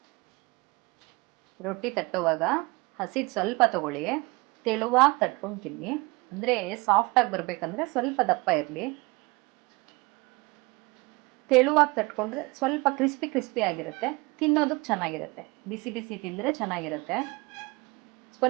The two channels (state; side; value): quieter; left; 25.1 dB